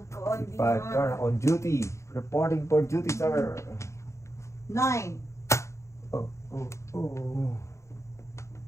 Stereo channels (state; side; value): late; right; 0.14 ms